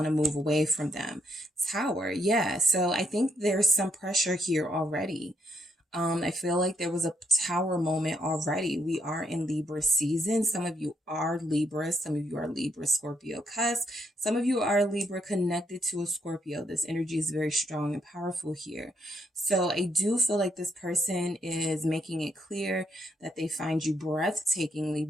to move away from them. Tower, yeah. So I think there's some pressure here already. I feel like there was a tower moment already. We are in Libra season. Some of you are Libra. Some of you are Libra Scorpio cusp. Some of you are Libra connected to a Scorpio. This energy is very strong and powerful here. So I do feel like this person is making it clear that they find you breathtakingly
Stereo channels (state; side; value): normal; both; correlation 0.74